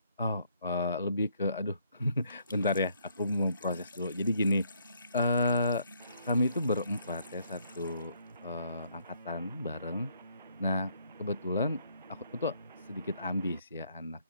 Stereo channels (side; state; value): both; inverted; correlation -0.69